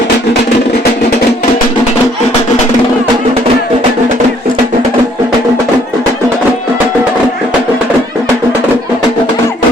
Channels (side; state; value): both; normal; correlation 0.62